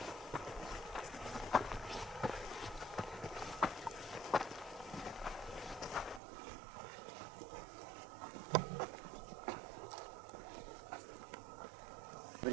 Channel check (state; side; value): drops out; left; at 6.2 s